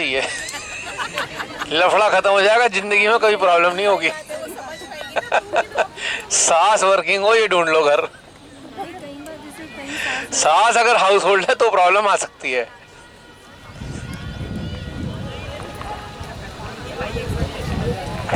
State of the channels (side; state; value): both; identical; correlation 1.00